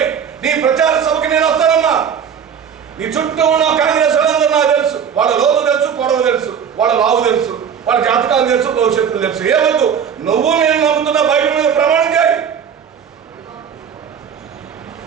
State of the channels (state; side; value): quieter; left; 7.6 dB